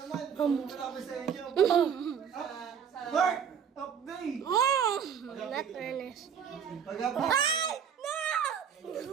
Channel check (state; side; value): quieter; left; 7.7 dB